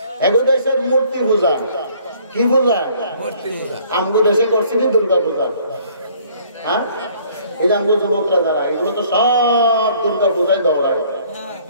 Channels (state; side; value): inverted; both; correlation -0.59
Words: এগো দেশের মূর্তি পূজা, কি পূজা? আমগো দেশে করছি দুর্গা পূজা। হ্যাঁ, এই যে আমগো যুবকরা যারা, এগুলো তো সব দুর্গা পূজায় দৌড়ায়।